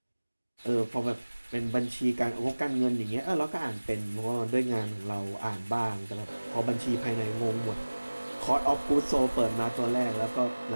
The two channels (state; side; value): inverted; both; correlation -1.00